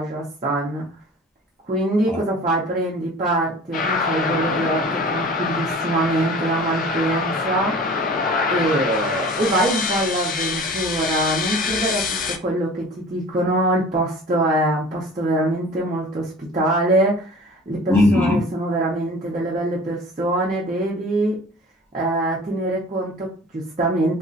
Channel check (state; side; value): normal; both; correlation 0.42